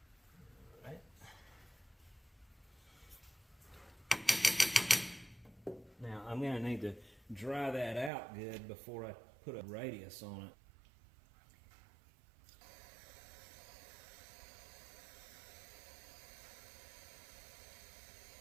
Now I'm going to need to dry that out good before I put a radius on it.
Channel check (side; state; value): left; drops out; at 8.1 s